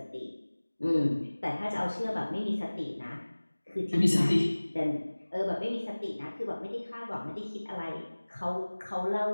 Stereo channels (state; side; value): inverted; both; correlation -1.00